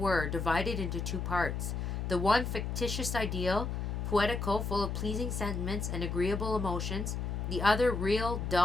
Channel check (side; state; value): left; noise; hum, 3 dB below the sound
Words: divided into two parts. The one fictitious ideal, poetical, full of pleasing sentiments and agreeable emotions. The other real,